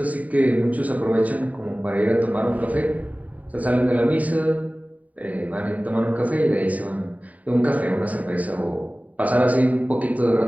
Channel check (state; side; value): late; left; 0.071 ms